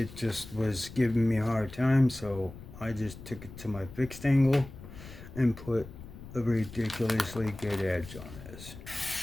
just was giving me a hard time, so I just took it to my fixed angle and put a ridiculously good edge on this.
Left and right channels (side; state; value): left; noise; rumble, 15 dB below the sound